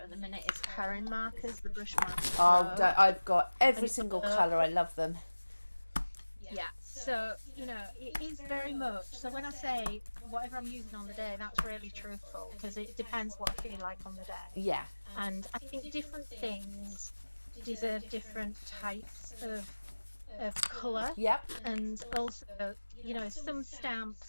at the minute is Karen markers, the brush markers. Oh, I've got every And, single colour. I love them. Yeah, so, you know, it is very much. So when I say whatever I'm using on the day, that's really truthful, because it depends what I feel like on the day. Yeah. And I think different things deserve different types of colour. Yep. And also, you know, some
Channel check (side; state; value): both; inverted; correlation -1.00